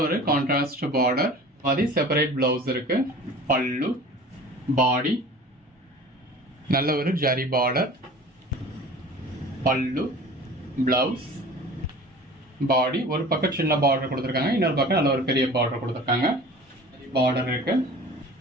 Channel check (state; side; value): normal; both; correlation 0.41